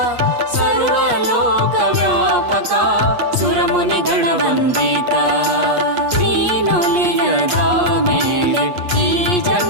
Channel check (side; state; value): left; late; 8.4 ms